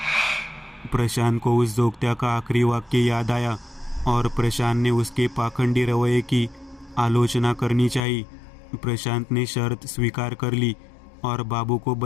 प्रशांत को उस जोगत्या का आखिरी वाक्य याद आया और प्रशांत ने उसके पाखंडी रवैये की आलोचना करनी चाहिए। प्रशांत ने शर्त स्वीकार कर ली और बाबू को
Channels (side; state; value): right; drops out; at 8.0 s